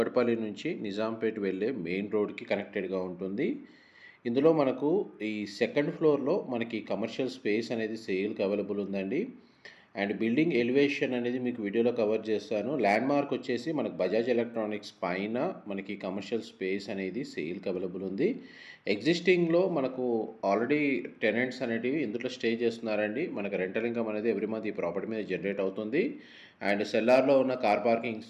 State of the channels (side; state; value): both; identical; correlation 1.00